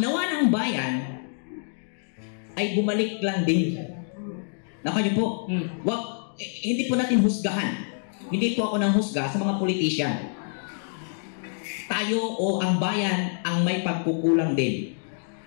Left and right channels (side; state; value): right; silent; digital silence